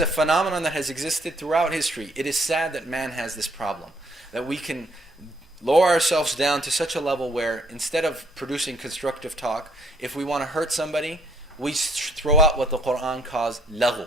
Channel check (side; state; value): both; normal; correlation 0.67